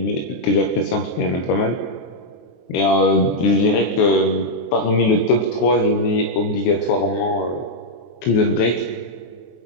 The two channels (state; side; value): late; right; 23 ms